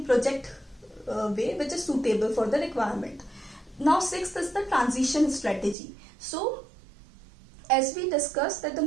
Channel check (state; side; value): drops out; left; at 5.8 s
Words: project way which is suitable for the requirement. Now sixth is the transition strategy. So as we discussed, that the